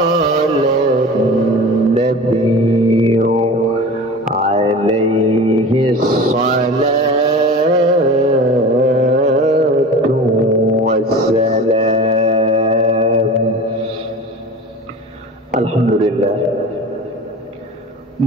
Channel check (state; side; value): normal; both; correlation 0.36